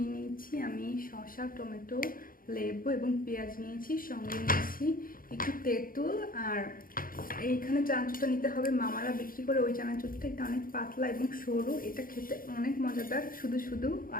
নিয়েছি আমি, শসা, টমেটো, লেবু এবং পেঁয়াজ নিয়েছি। সঙ্গে নিয়েছি একটু তেঁতুল। আর এইখানে চানাচুরটা নিতে হবে মামারা বিক্রি করে ওই চানাচুরটা। এটা অনেক পাতলা এবং সরু, এটা খেতে অনেক মজাদার শুধু শুধু,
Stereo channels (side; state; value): right; late; 0.41 ms